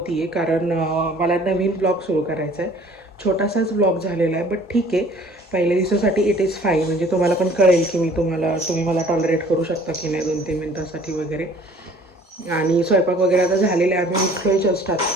कारण मला नवीन ब्लॉग सुरू करायचा आहे. छोटासाच ब्लॉग झालेला आहे, बट ठीक आहे. पहिल्या दिवसासाठी इट इज फाईन. म्हणजे तुम्हाला पण कळेल की तुम्ही मला टॉलरेट करू शकता की नाही 2-3 मिनिटासाठी वगैरे. आणि स्वयंपाक वगैरे आता झालेला आहे. आम्ही उठलोय जस्ट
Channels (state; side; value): normal; both; correlation 0.53